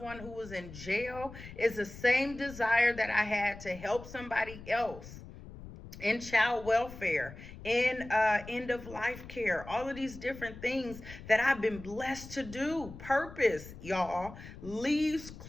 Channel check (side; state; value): left; noise; rumble, 15 dB below the sound